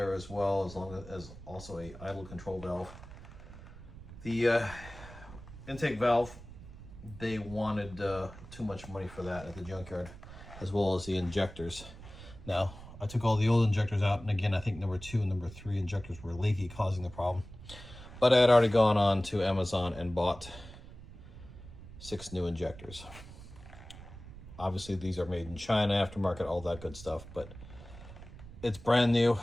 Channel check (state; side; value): noise; right; rumble, 15 dB below the sound